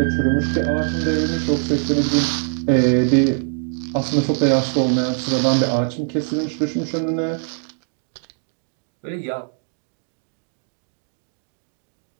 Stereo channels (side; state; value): left; silent; digital silence